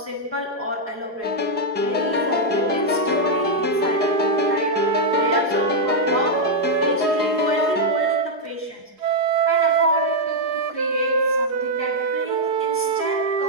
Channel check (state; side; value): late; left; 4.8 ms